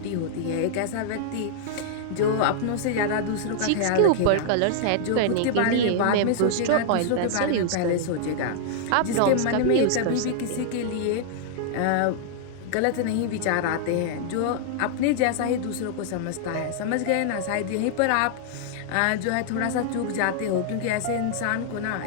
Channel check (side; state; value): both; different; correlation -0.01